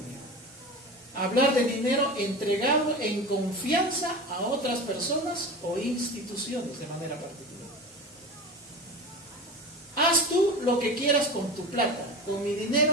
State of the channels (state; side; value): normal; both; correlation 0.30